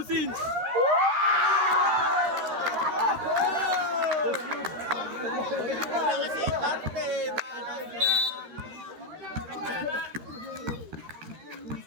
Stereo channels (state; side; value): late; left; 13 ms